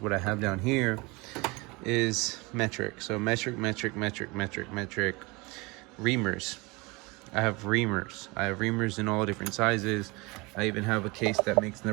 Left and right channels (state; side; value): quieter; left; 25.5 dB